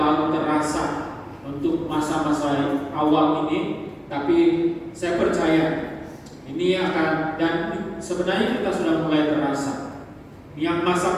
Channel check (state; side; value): identical; both; correlation 1.00